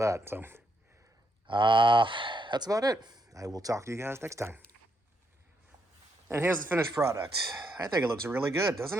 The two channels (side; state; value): both; normal; correlation 0.78